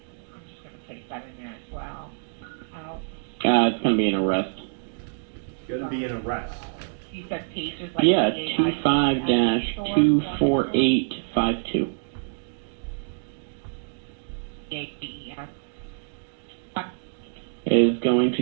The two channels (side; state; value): left; silent; digital silence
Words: I'm just going to place that in there as well. It's going to be an arrest. It's gonna be an arrest. You said pages like Yeah, 25-24852. Is going